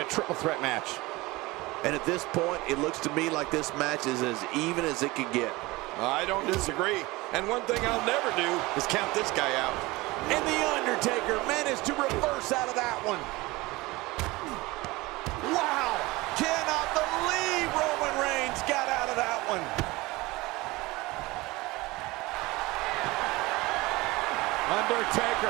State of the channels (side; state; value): left; quieter; 21.5 dB